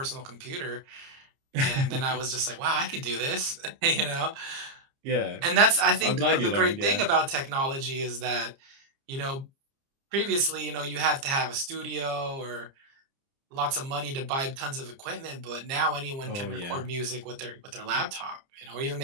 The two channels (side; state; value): left; late; 30 ms